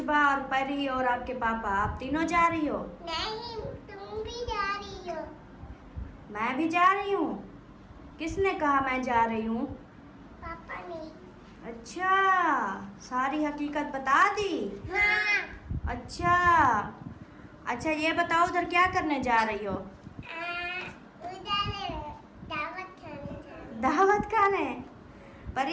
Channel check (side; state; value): both; identical; correlation 1.00